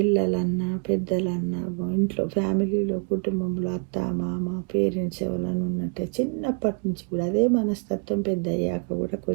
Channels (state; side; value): quieter; left; 38.2 dB